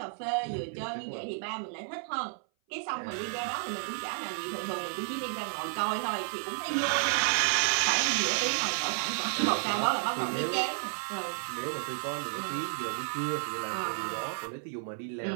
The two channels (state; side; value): silent; left; 57 dB below the other